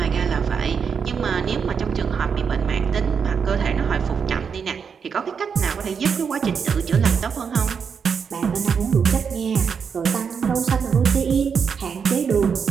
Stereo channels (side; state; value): left; quieter; 6.4 dB